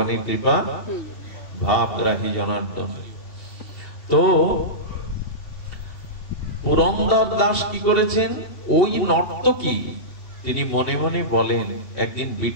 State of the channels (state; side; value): late; right; 2.8 ms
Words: কৃপা। ভাবগ্রাহী জনার্দন। তো পুরন্দর দাস কি করেছেন, ওই নর্তকী তিনি মনে মনে বলেন, একদিন